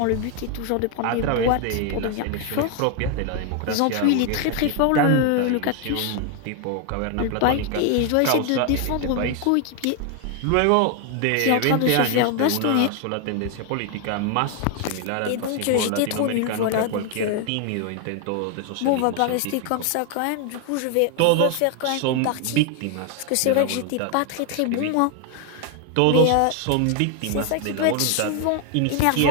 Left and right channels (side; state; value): both; different; correlation 0.01